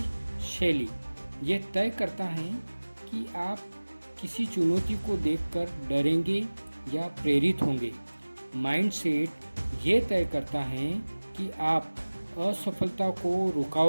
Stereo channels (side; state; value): both; inverted; correlation -1.00